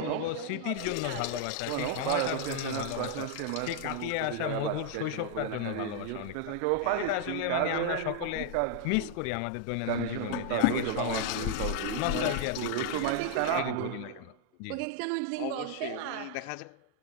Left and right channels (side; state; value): both; different; correlation 0.00